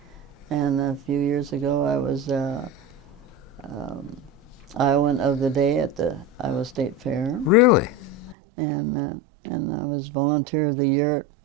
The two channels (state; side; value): drops out; left; at 8.3 s